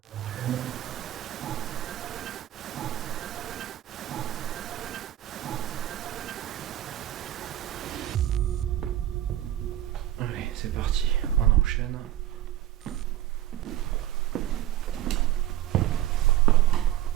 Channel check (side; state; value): left; quieter; 13.2 dB